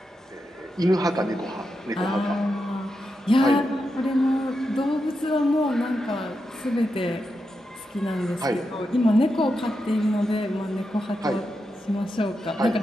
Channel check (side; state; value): both; normal; correlation 0.87